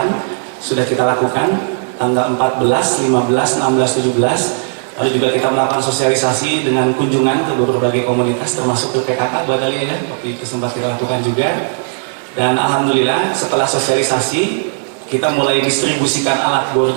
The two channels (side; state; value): left; silent; digital silence